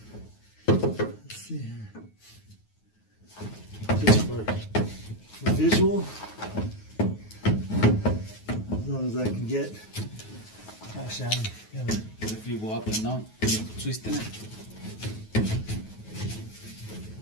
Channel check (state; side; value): late; right; 9.4 ms